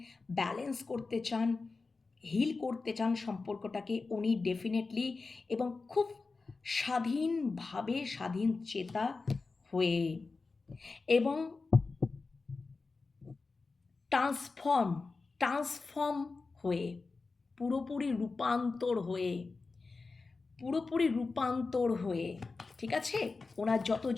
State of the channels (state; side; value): quieter; right; 4.0 dB